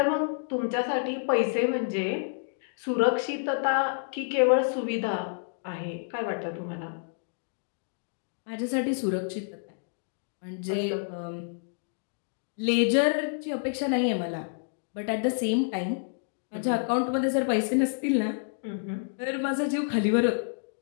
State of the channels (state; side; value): silent; right; digital silence